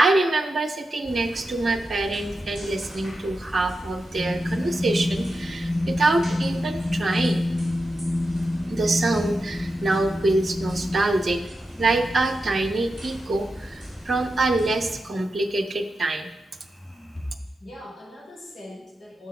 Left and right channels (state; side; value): normal; both; correlation 0.89